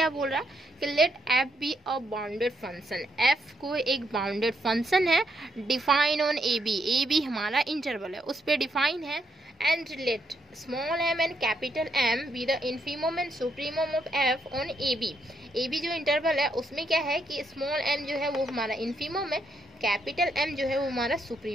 बोल रहा है कि let f be a bounded function, f को एक बाउंडेड फंक्शन है, डिफाइन ऑन ए बी हमारा इंटरवल है, उस पर डिफाइन है, and let small m and capital m be the infimum and supremum of f on a b जो interval है उसमें क्या है कि स्मॉल एम जो है वो हमारा इन्फीमम है, कैपिटल एम जो है वो हमारा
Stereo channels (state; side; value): normal; both; correlation 0.76